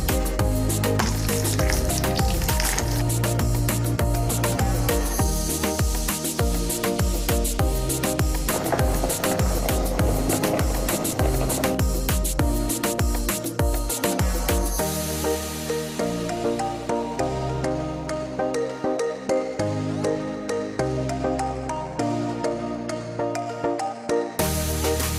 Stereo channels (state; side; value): identical; both; correlation 1.00